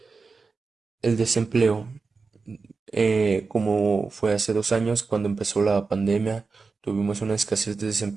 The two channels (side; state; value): left; quieter; 4.4 dB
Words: El desempleo. como fue hace 2 años cuando empezó la pandemia, tuvimos una escasez de